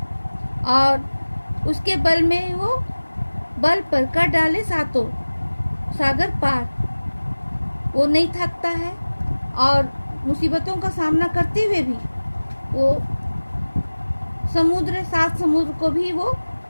और उसके बल में वो बल पर कर डाले सातों सागर पार। वो नहीं थकता है और मुसीबतों का सामना करते हुए भी वो सात समुद्र को भी वो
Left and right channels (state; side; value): inverted; both; correlation -1.00